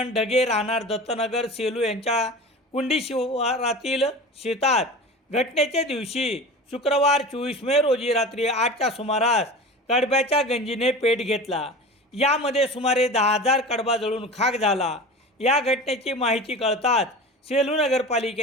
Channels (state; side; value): normal; both; correlation 0.34